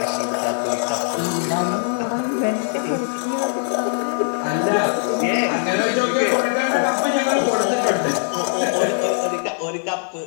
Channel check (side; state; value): right; silent; digital silence